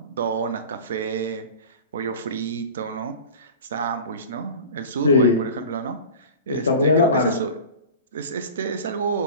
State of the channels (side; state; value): both; inverted; correlation -0.36